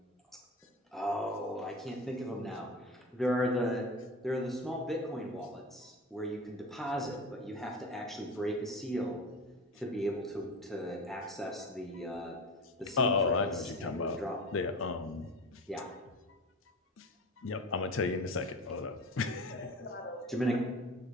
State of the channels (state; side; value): normal; both; correlation 0.31